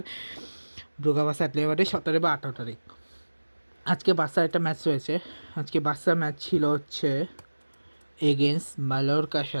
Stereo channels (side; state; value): both; inverted; correlation -1.00